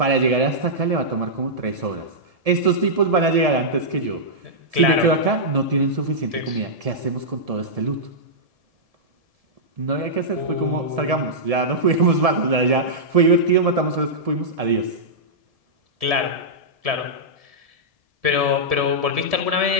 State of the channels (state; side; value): late; left; 1.7 ms